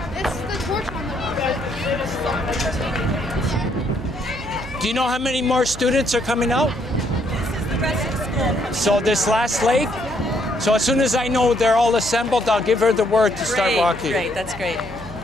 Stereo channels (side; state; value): right; noise; hum, 13 dB below the sound